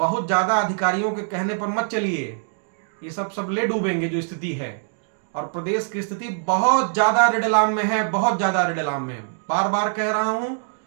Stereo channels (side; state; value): left; silent; digital silence